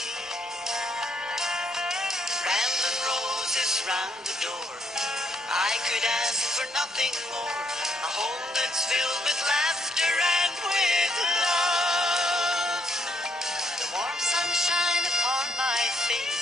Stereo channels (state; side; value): normal; both; correlation 0.72